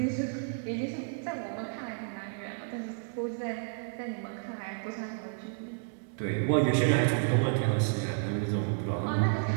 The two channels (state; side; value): silent; left; digital silence